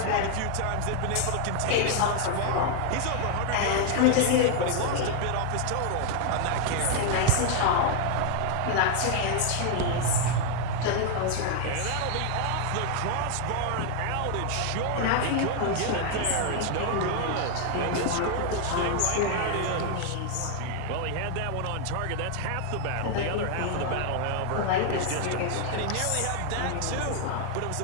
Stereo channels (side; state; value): both; different; correlation 0.00